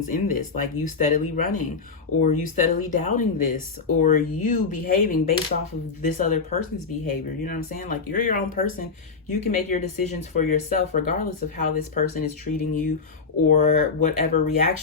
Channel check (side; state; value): right; quieter; 4.8 dB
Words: in this? Like you steadily running, or you steadily doubting this, or you behaving based off of this other person's behavior. You know what I'm saying? Like you're your own person. You can make your decisions for yourself, regardless of how this person is treating you or whatever